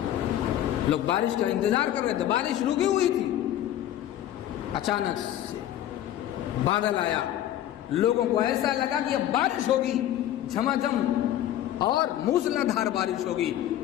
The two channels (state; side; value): quieter; right; 12.2 dB